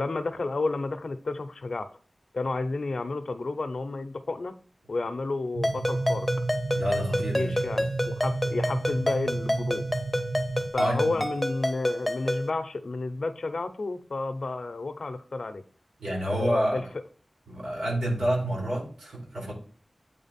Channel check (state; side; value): normal; both; correlation 0.95